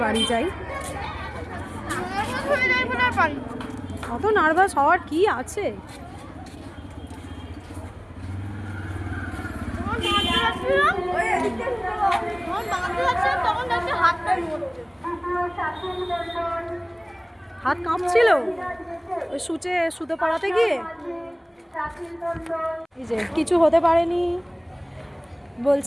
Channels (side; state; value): both; identical; correlation 1.00